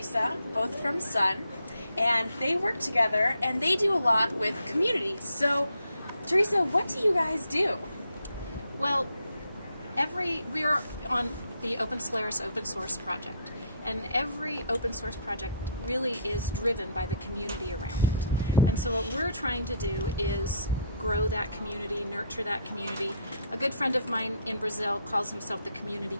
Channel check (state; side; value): inverted; both; correlation -0.67